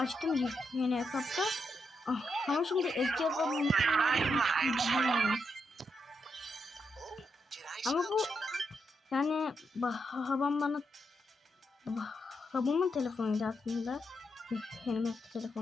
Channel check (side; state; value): both; normal; correlation 0.82